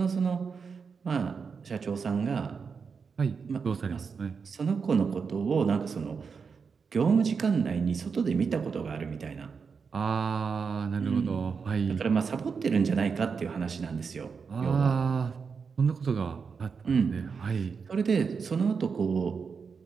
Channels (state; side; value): quieter; left; 5.6 dB